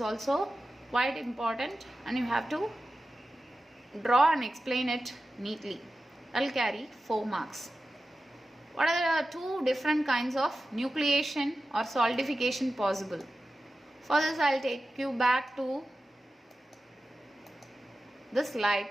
also quite important, and you have to draw and explain it neatly. That will carry 4 marks. What are the two different kinds of nucleation or solidification possible? For this, I will take you back to this slide.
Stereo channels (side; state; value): both; normal; correlation 0.93